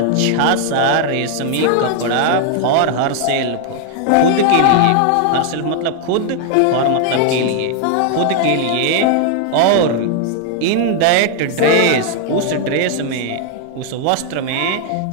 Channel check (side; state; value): both; different; correlation 0.00